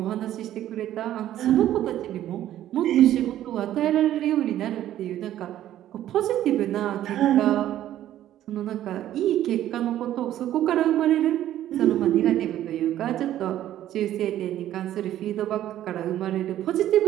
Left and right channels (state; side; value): quieter; left; 12.5 dB